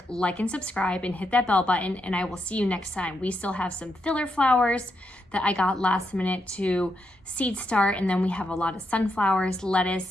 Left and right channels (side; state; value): both; normal; correlation 0.82